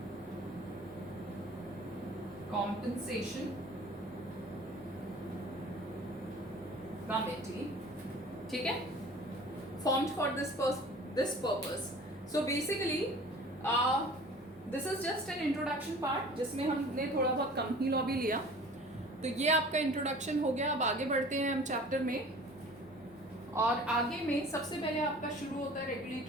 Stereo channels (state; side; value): normal; both; correlation 0.45